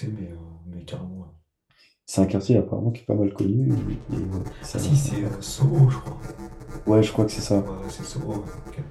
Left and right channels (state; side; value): identical; both; correlation 1.00